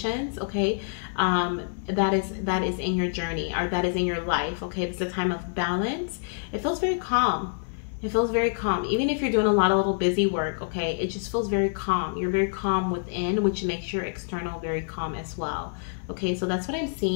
Okay, that is in your journey, or that is in your life. Okay, this is a time of balance. It feels very calm. It feels very calm. Even if you're doing a lot of little busy work, okay, it just feels very calm. You're very calm within, which makes your external very calm as well. Okay, so that's what I'm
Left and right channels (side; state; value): right; silent; 60 dB below the other